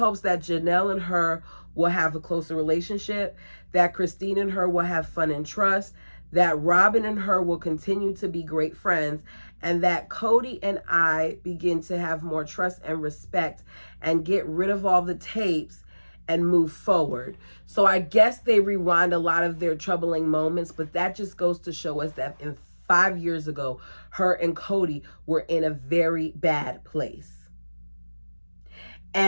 that Janelle and her will have a closer relationship, that Christine and her will have fun and trust, that Robin and her will continue to be great friends, and that Kody and I begin to have more trust and respect and get rid of all the tapes and move forward. So I guess they rewind a lot of their troubling moments, but that just goes to show us that 5 years ago, her and Kody were in a very bad place.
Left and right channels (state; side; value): inverted; both; correlation -1.00